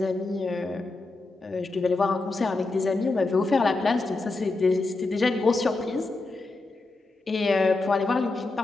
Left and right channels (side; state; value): right; quieter; 3.3 dB